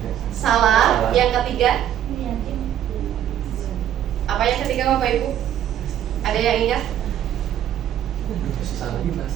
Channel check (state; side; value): quieter; left; 10.8 dB